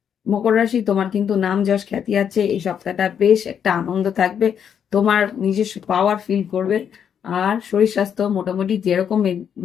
মকর রাশি, তোমার কিন্তু নাম যশ খ্যাতি আছে, এই সপ্তাহটা বেশ একটা আনন্দ থাকবে, তোমার নিজস্ব পাওয়ার ফিল করবে। আর শরীর স্বাস্থ্য মোটামুটি যেরকম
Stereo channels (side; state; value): right; quieter; 8.2 dB